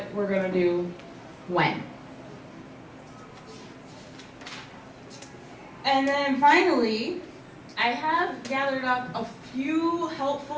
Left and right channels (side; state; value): both; identical; correlation 1.00